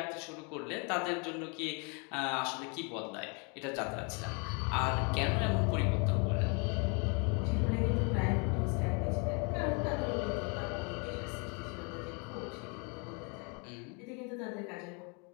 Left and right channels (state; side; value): quieter; right; 34.1 dB